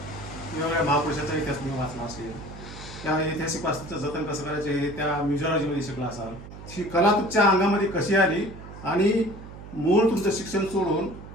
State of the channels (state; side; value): noise; right; hum, 14 dB below the sound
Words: महापुरुषाचा इतिहास तुम्ही वाचला असेल, त्या ऐतिहासिक वास्तूचं जतन कसं करायचं हे त्या म्युझिओलॉजीमध्ये शिकला असाल. ही कला तुमच्या अंगामध्ये कशी आली आणि मूळ तुमचं शिक्षण सोडून